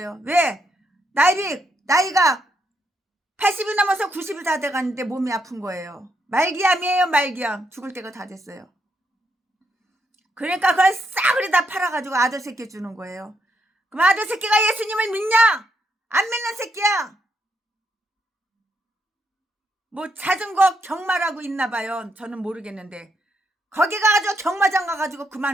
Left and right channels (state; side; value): normal; both; correlation 0.78